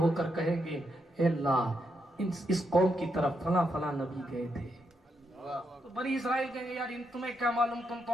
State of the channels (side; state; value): both; normal; correlation 0.81